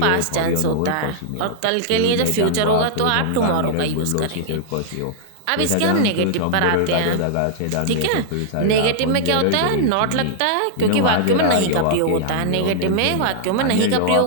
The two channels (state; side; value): different; both; correlation -0.01